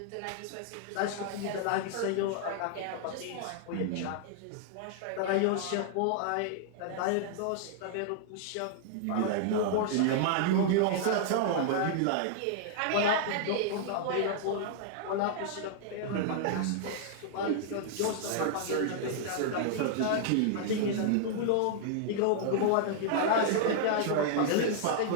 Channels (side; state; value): both; different; correlation -0.01